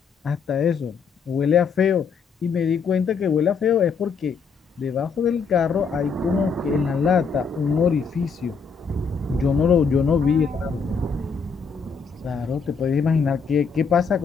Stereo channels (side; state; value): right; quieter; 5.5 dB